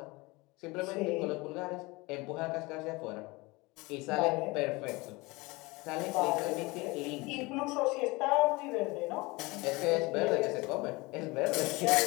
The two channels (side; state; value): right; quieter; 23.9 dB